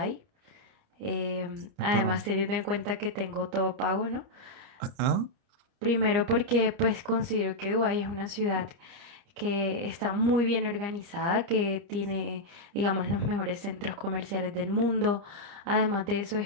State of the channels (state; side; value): late; left; 29 ms